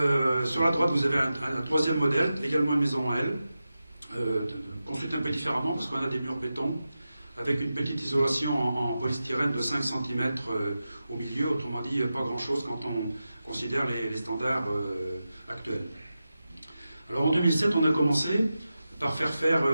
Sur la droite, vous avez un troisième modèle, également une maison en L, construite un peu différemment parce qu'on a des murs béton avec une petite isolation en polystyrène de 5 cm au milieu, autrement dit pas grand-chose quand on considère les standards actuels. Alors en 2007, on a commencé par faire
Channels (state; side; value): inverted; both; correlation -0.92